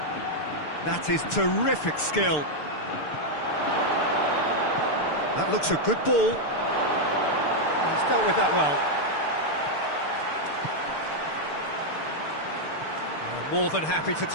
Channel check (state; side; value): late; right; 6.7 ms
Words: That is terrific skill. That looks a good ball. He's dealt with that well. More than happy to